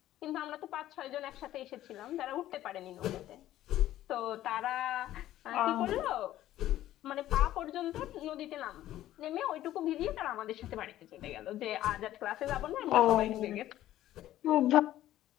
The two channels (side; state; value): right; quieter; 13.7 dB